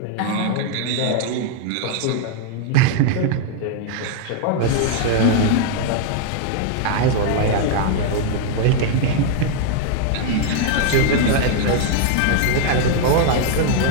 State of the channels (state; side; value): different; both; correlation 0.00